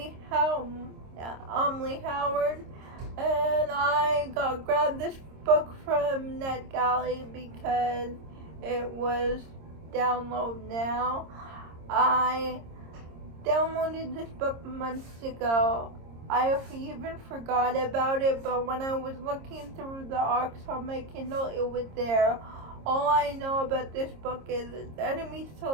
Howard. And I grabbed this book from NetGalley because it was download now. I downloaded this book months ago. I even forgot about it, but when I was looking through the arcs on my Kindle, it was there. All I know about this book is it's enemies to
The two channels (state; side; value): late; left; 26 ms